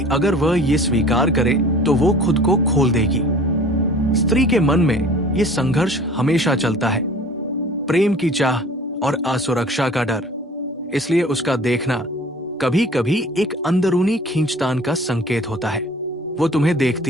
अगर वह ये स्वीकार करे तो वो खुद को खोल देगी। स्त्री के मन में ये संघर्ष हमेशा चलता है, प्रेम की चाह और असुरक्षा का डर। इसलिए उसका देखना कभी कभी एक अंदरूनी खींचतान का संकेत होता है। वो तुम्हें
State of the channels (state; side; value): normal; both; correlation 0.47